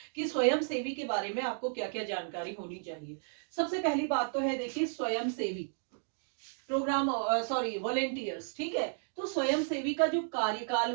कि स्वयं सेवी के बारे में आपको क्या क्या जानकारी होनी चाहिए। सबसे पहली बात तो है, देखिए, स्वयं सेवी प्रोग्राम, सॉरी, वॉलेंटियर्स। ठीक है, तो स्वयं सेवी का जो कार्यकाल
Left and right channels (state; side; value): silent; left; digital silence